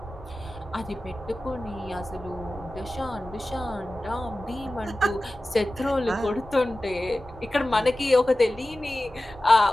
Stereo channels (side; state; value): both; normal; correlation 0.96